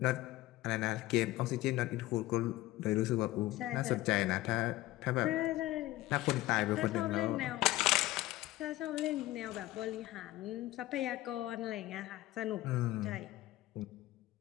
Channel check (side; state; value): right; quieter; 17.0 dB